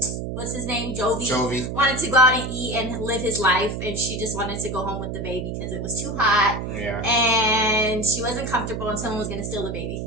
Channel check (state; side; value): noise; right; hum, 5 dB below the sound